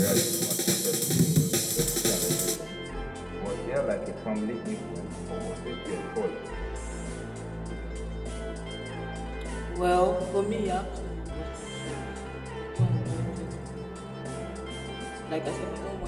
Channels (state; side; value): identical; both; correlation 1.00